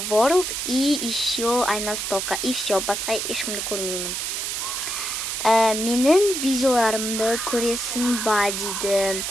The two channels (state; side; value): noise; right; hiss, 3 dB below the sound